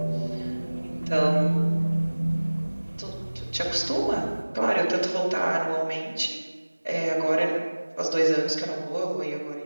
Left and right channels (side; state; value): both; inverted; correlation -1.00